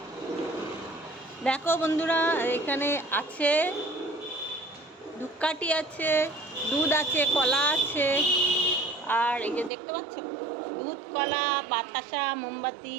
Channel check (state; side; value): drops out; left; at 9.7 s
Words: দেখো বন্ধুরা, এখানে আছে ধূপকাঠি আছে, দুধ আছে, কলা আছে। আর এই যে দেখতে পাচ্ছ, দুধ, কলা, বাতাসা, মোমবাতি